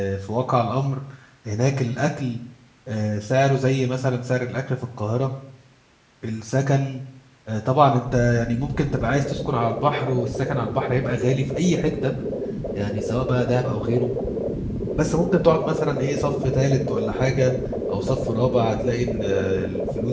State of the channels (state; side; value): identical; both; correlation 1.00